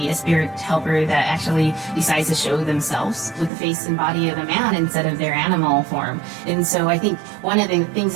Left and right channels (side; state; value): left; drops out; at 3.5 s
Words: a spirit helper that actually decides to show themselves with the face and body of a man instead of their animal form. And so I think one of the things